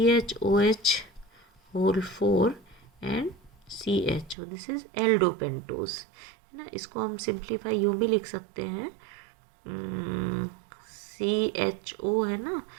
whole 4 and CHO, this is aldopentose, है ना। इसको हम सिंप्लीफाई यूँ भी लिख सकते हैं, CHO है ना,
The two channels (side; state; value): left; drops out; at 4.4 s